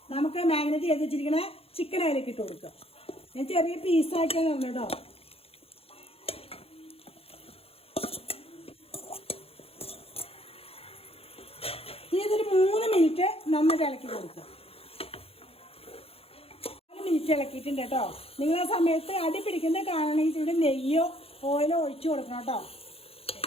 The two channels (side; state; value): right; late; 0.28 ms